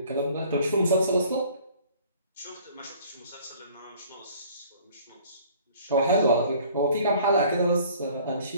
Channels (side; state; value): both; inverted; correlation -0.53